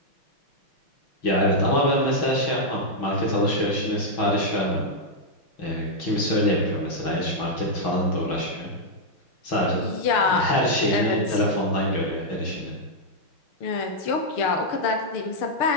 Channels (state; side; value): late; right; 6.1 ms